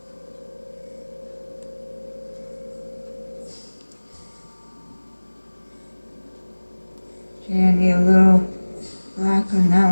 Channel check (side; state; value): both; inverted; correlation -1.00